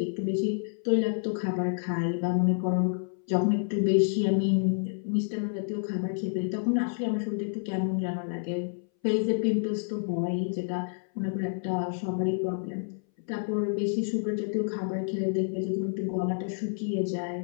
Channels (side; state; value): right; silent; 59 dB below the other